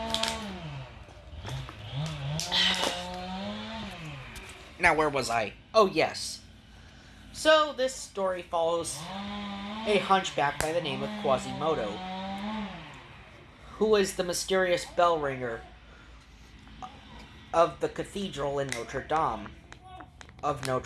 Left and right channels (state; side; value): identical; both; correlation 1.00